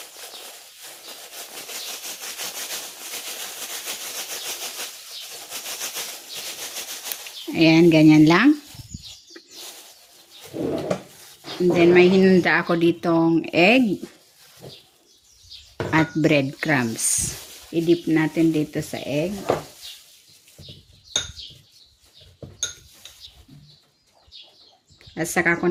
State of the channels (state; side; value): identical; both; correlation 1.00